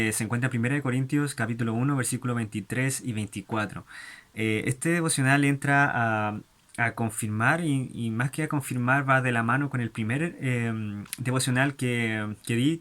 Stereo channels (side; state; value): both; identical; correlation 1.00